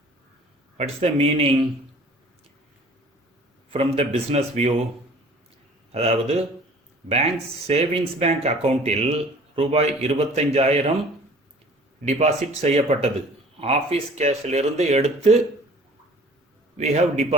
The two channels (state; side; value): normal; both; correlation 0.49